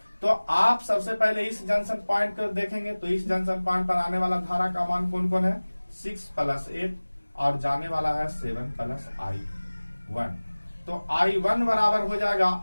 तो आप सबसे पहले इस जंक्शन पॉइंट को देखेंगे तो इस जंक्शन पॉइंट पर आने वाला धारा का मान कौन कौन है 6 प्लस 8 और जाने वाला है 7 प्लस I1। तो I1 बराबर हो जाएगा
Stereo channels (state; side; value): inverted; both; correlation -1.00